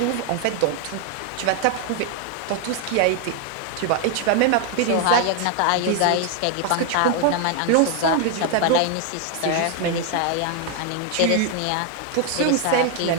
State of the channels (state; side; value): different; both; correlation 0.01